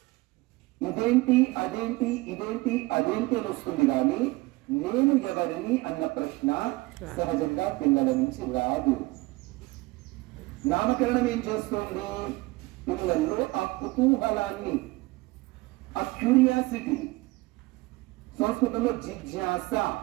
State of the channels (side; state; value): left; quieter; 21.9 dB